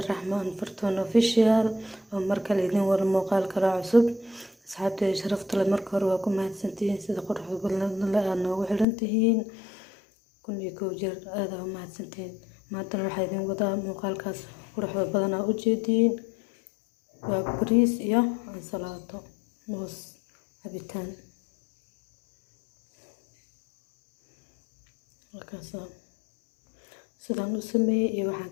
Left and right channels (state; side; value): drops out; right; at 8.8 s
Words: فرتون اوفيشال ومركل إذن والمقال كلا عصب. أصحابتي شرفت لمركر وكم هاتسنتين سيد قرح قلنا لأنه وحلنتهين كن يكوجر هذا هم هاتسنتين ما تروح إذن وضع مقال كاس قرح بدنا أجدين وبريس يا عن صلاته موس عبيتان markaasa sidaan u sameeyey iyo waxaan